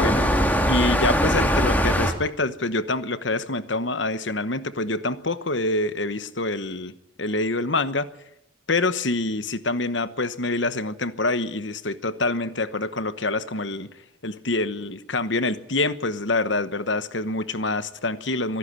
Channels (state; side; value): normal; both; correlation 0.22